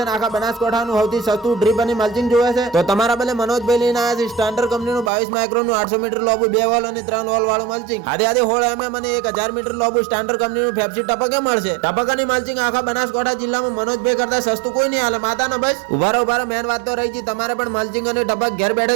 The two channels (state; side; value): drops out; left; at 5.1 s